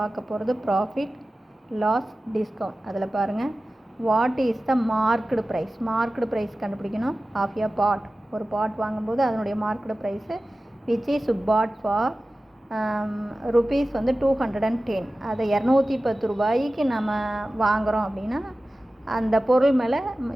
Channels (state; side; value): normal; both; correlation 0.96